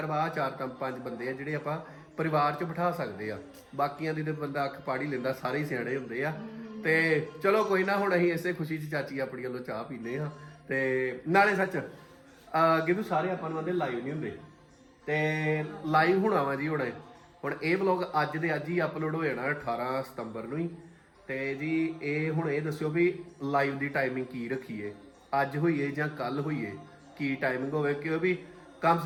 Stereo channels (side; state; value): both; identical; correlation 1.00